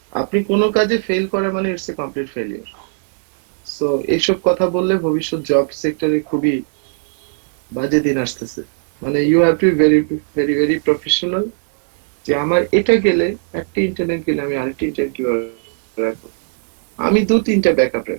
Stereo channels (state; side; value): silent; left; digital silence